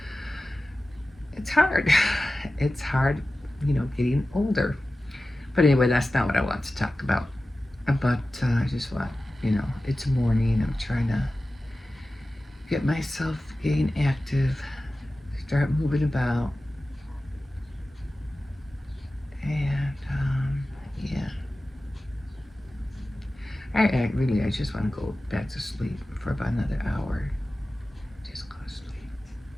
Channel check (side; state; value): both; normal; correlation 0.95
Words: it's hard. It's hard, getting older. But anyway, that's not what I want to talk about. But I just want, it's morning. I'm trying to get myself getting active, start moving about. And, yeah. I just want to go back to sleep for about another hour. Just go to sleep.